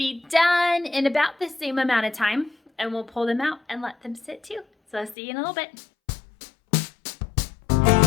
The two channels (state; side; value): drops out; right; at 5.2 s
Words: done in about the same amount of time, and we'll pull them out and let them sit too. So I'll see you in a little bit.